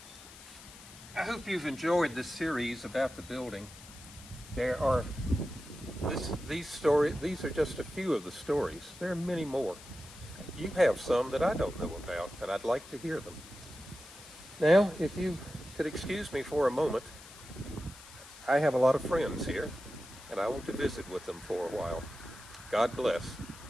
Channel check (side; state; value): left; noise; hiss, 18 dB below the sound